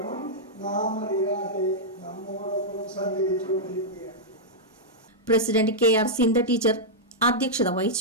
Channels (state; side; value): normal; both; correlation -0.09